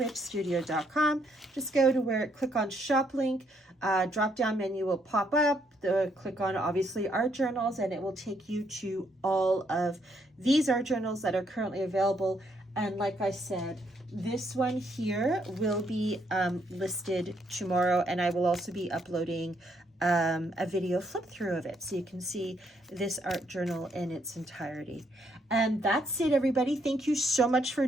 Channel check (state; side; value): normal; both; correlation 0.73